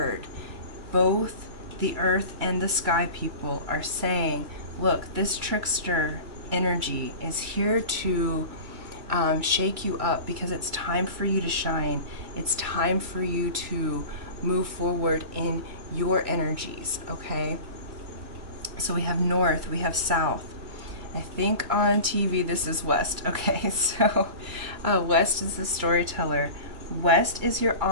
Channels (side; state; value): left; late; 2.3 ms